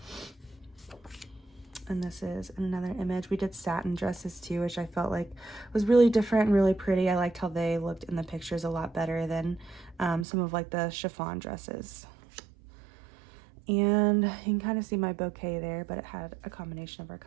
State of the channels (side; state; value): left; drops out; at 10.2 s